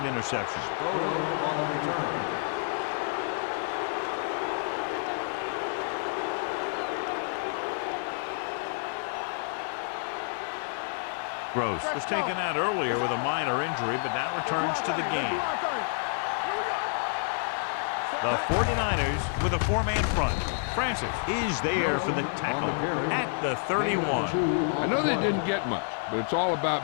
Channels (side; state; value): right; silent; digital silence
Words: interception. Spoto on the return. Gross was taken out earlier with a minor injury, but now returns to the game. The 49ers with a 4-man front. Francis is there for the tackle at the 31. I know they didn't get much, but it's all